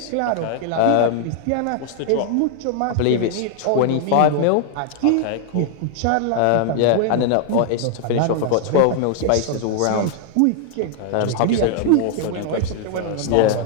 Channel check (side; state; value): both; different; correlation 0.00